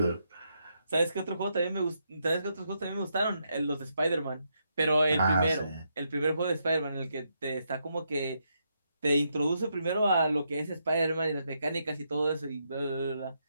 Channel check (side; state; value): both; inverted; correlation -0.80